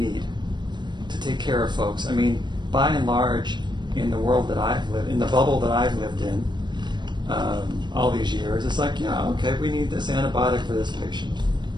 to take care of folks. I mean, by and large, in the world that I've lived, in the bubble that I've lived in all these years, it's like, yeah, okay, we need this antibiotic for this patient.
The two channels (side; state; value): left; late; 0.22 ms